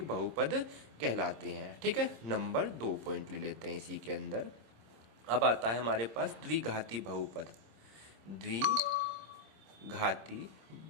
बहुपद कहलाते हैं। ठीक है, नंबर 2 पॉइंट ले लेते हैं इसी के अंदर। अब आता है हमारे पास द्विघाती बहुपद। द्विघाती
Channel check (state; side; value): late; left; 26 ms